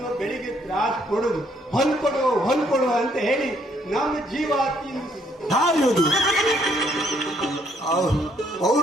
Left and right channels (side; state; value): both; normal; correlation 0.68